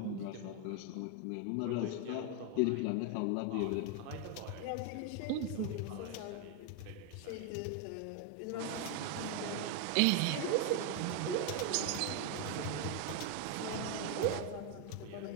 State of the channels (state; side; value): different; both; correlation 0.01